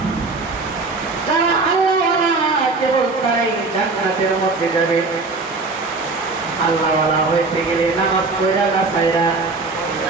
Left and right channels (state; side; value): quieter; left; 3.8 dB